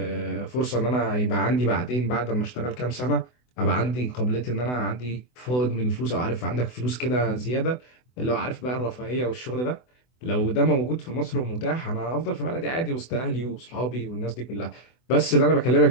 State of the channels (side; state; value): right; late; 24 ms